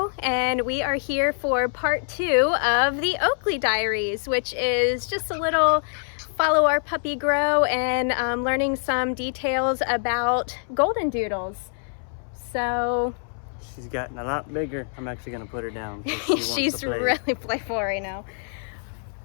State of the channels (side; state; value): right; silent; 62 dB below the other